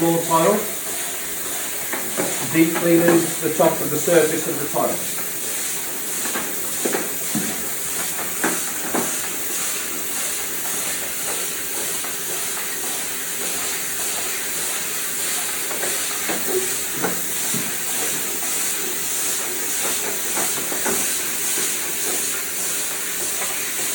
tile, deep cleaning the top of the surface of the tile.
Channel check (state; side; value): identical; both; correlation 1.00